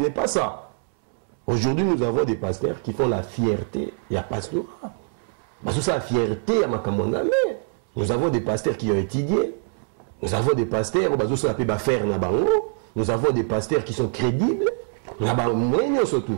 pas ça. Aujourd'hui, nous avons des pasteurs qui font la fierté. Il y a pasteur. Parce que ça, la fierté à ma commandame. Nous avons des pasteurs qui ont étudié. Nous avons des pasteurs, nous avons des pasteurs qui sont crédibles.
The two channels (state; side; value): silent; left; 63 dB below the other